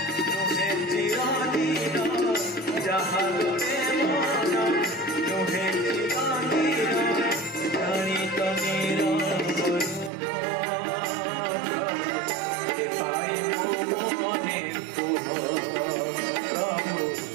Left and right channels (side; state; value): left; drops out; at 10.1 s